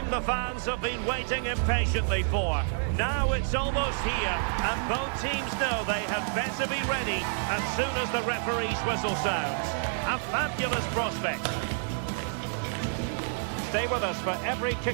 the fans have been waiting impatiently for. Now it's almost here, and both teams know they had better be ready as soon as the referee's whistle sounds. A fabulous prospect. Stay with us for every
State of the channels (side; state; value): left; silent; 59 dB below the other